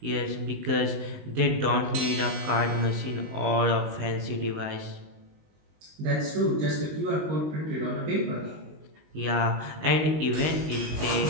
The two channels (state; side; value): late; left; 19 ms